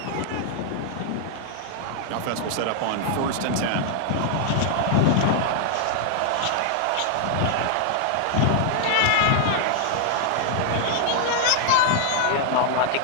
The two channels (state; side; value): different; both; correlation 0.00